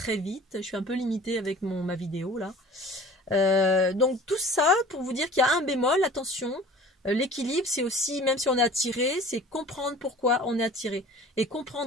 vite, je suis un peu limitée avec ma vidéo là. Donc tout ça pour vous dire qu'il y a un bémol, attention, l'équilibre c'est aussi, même si on est attiré, c'est comprendre pourquoi on est attiré. Et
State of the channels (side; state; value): both; normal; correlation 0.44